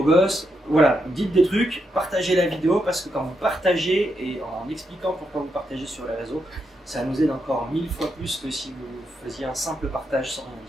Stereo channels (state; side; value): normal; both; correlation 0.82